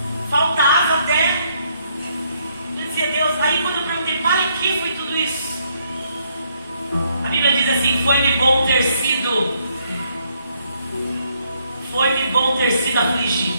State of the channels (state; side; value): inverted; both; correlation -0.71